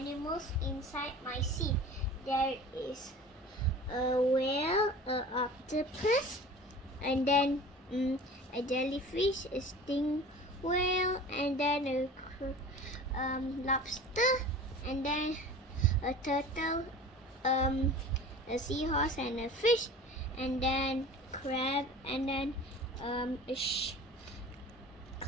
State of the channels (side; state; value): both; normal; correlation 0.40